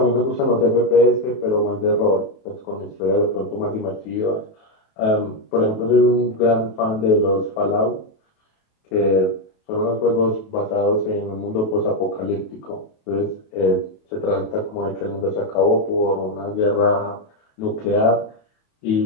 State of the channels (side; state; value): right; late; 28 ms